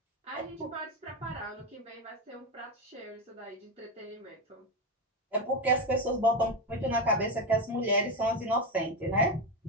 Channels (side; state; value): both; normal; correlation 0.13